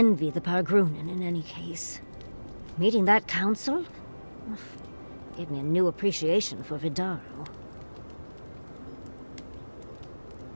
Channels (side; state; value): both; inverted; correlation -1.00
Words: the Pargrunen in any case. Meeting that council gave me a new appreciation for Vidaro.